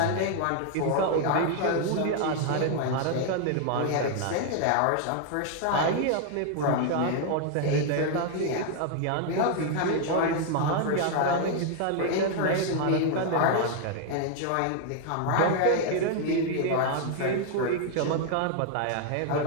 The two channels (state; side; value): different; both; correlation 0.00